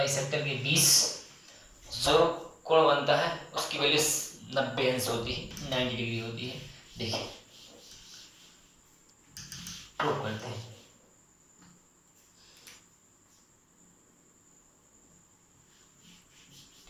के बीच जो कोण बनता है उसकी वैल्यू 90 अंश होती है, 90 डिग्री होती है। देखिए प्रूफ करते हैं।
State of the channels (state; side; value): identical; both; correlation 1.00